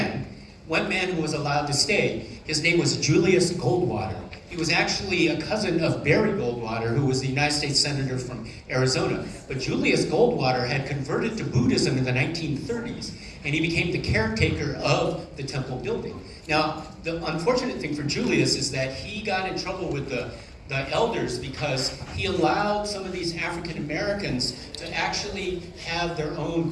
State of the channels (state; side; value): identical; both; correlation 1.00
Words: who was allowed to stay. His name was Julius Goldwater. He was actually a cousin of Barry Goldwater, who was the United States Senator from Arizona. But Julius Goldwater had converted to Buddhism in the 1930s, and he became the caretaker of the temple building. Now, the unfortunate thing for Julius is that he got in trouble with the elders because he allowed some of these African Americans to actually have their own